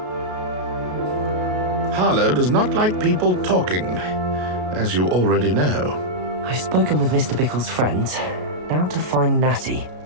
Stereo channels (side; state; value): left; late; 33 ms